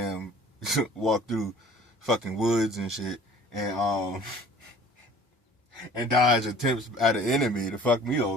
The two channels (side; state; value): both; normal; correlation 0.49